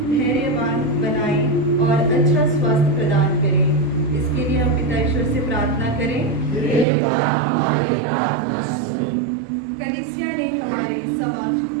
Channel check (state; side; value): drops out; left; at 6.9 s